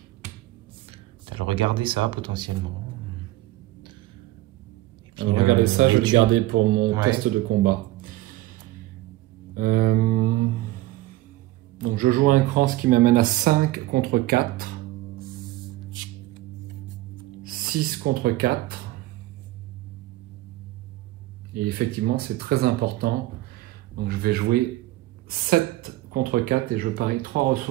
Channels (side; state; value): left; quieter; 17.1 dB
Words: T'as le regarder ça, potentiellement. Regardez ça, je vais le garder pour mon test de combat. Donc je joue un cran, ce qui m'amène à 5 contre 4. 6 contre 4. Et effectivement, c'est très important. Donc je vais jouer 7 contre 4 et je parie 3